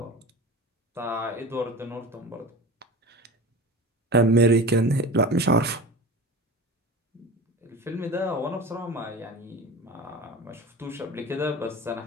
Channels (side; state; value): both; normal; correlation 0.32